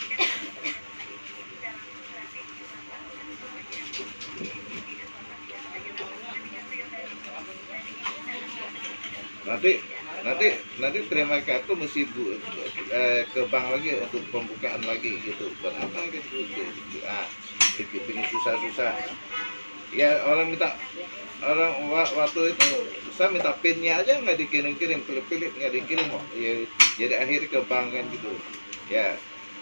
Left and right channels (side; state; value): both; inverted; correlation -1.00